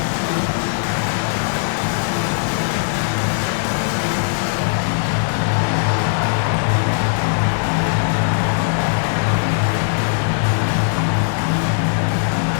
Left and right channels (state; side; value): silent; right; digital silence